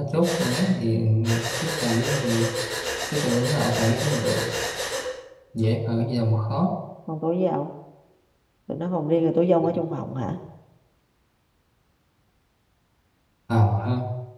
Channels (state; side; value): identical; both; correlation 1.00